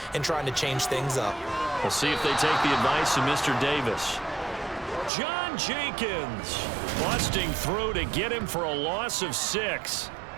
and trying to change things up. We'll see if they take the advice of Mr. Davis. John Jenkins busting through to get him for a loss of 6.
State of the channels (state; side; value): drops out; left; at 5.1 s